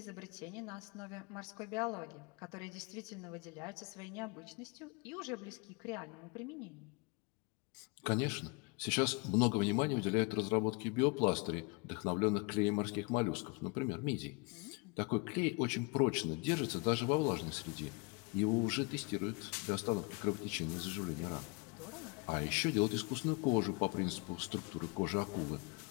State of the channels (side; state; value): right; quieter; 29.8 dB